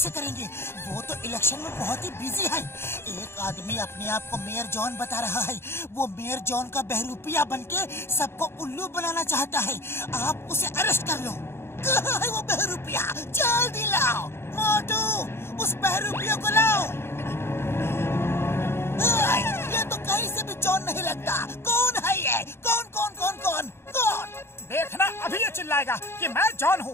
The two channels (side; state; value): right; late; 0.12 ms